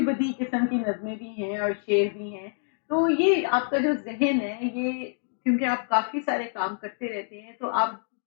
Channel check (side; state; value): right; silent; digital silence